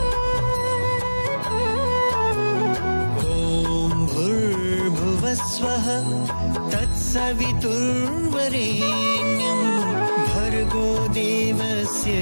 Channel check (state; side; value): inverted; both; correlation -1.00